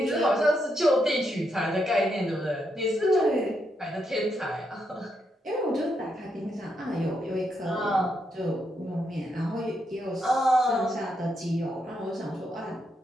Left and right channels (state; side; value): normal; both; correlation 0.80